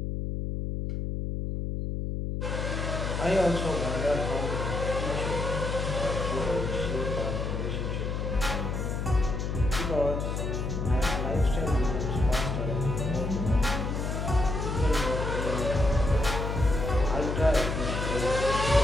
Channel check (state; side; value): noise; left; hum, 2 dB below the sound